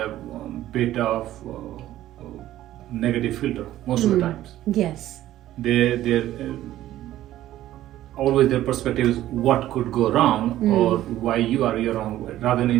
a bit of negative filter most of the times. Yes. They're always their perspective is what could go wrong or why you're wrong, rather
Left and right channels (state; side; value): quieter; left; 13.8 dB